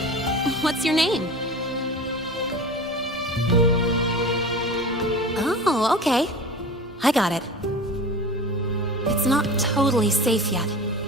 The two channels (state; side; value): normal; both; correlation 0.34